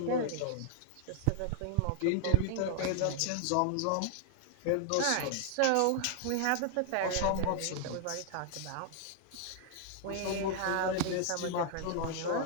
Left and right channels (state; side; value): different; both; correlation -0.01